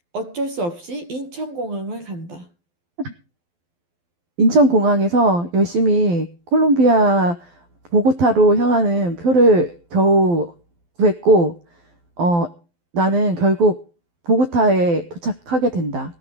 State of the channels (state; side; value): late; left; 12 ms